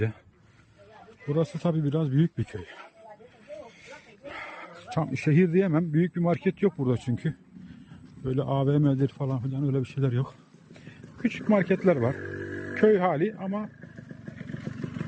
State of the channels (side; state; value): both; identical; correlation 1.00